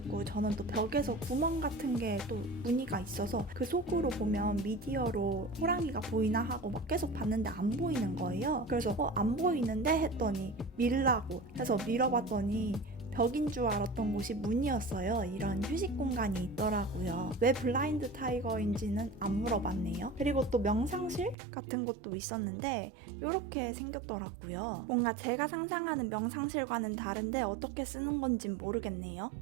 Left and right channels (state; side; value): drops out; left; at 21.4 s